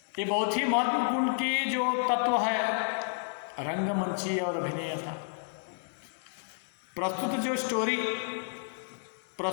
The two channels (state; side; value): silent; right; 57 dB below the other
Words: ये बहुत ही महत्वपूर्ण की जो तत्व है, रंगमंची और अभिनेता। प्रस्तुत जो स्टोरी,